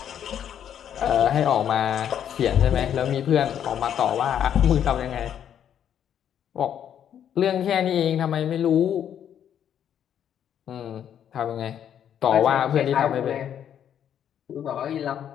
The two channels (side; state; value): right; quieter; 9.4 dB